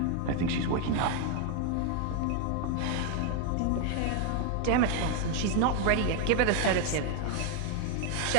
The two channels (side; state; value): both; different; correlation 0.00